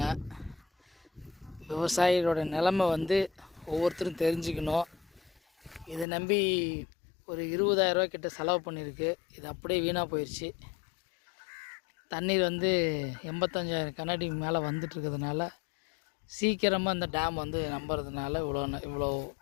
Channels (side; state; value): right; drops out; at 6.1 s